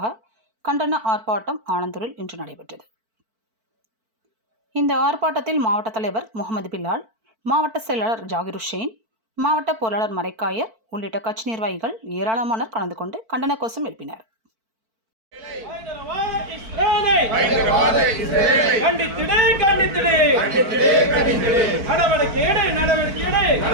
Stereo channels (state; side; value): late; left; 4.5 ms